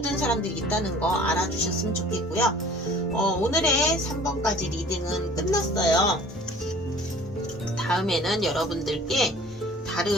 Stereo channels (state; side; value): normal; both; correlation 0.49